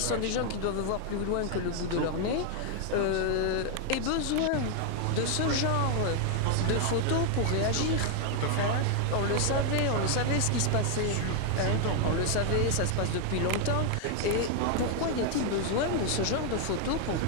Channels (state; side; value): different; both; correlation 0.00